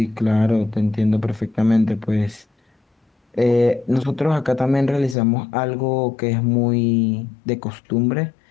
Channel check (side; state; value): right; drops out; at 5.2 s